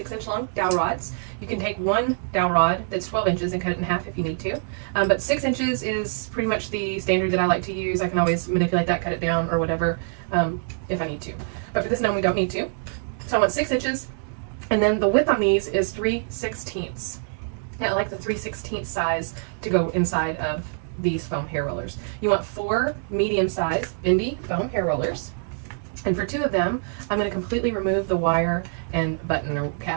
long dowel rods. You can take one dowel rod that's 12 inches and cut it in half if you need to. But 6 inches is pretty much the standard that I like to use. I can always manipulate that, cut it down or whatever if I need to. But for this gnome, we don't need to. So I want 6 inches, and then the width on these is 3/16. Yeah, I like the 3/16 size to go inside of these foam hair rollers. You want 4 medium-sized bendy foam hair rollers. And for 2 of them, I'm going to completely remove the wire and button or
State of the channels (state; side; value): silent; left; digital silence